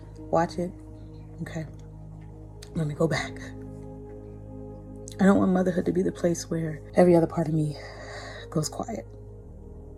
Watch it. Okay. Let me go back. I don't want motherhood to be the place where every other part of me goes quiet.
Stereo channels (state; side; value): identical; both; correlation 1.00